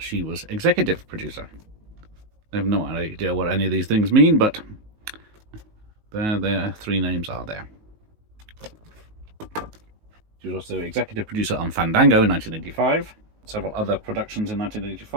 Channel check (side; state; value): left; late; 19 ms